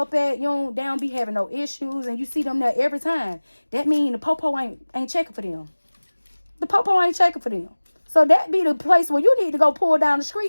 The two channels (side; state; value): both; inverted; correlation -1.00